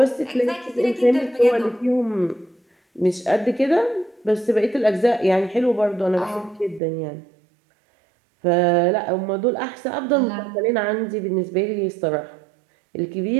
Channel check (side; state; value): left; drops out; at 6.8 s